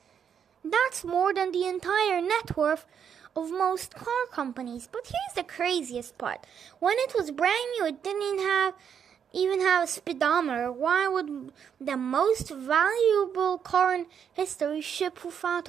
That's more than the entire net worth of most car companies. But here's the craziest part. When it was brand new, it didn't even have a speedometer. Why would the most valuable car in history ship without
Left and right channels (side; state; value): left; quieter; 7.9 dB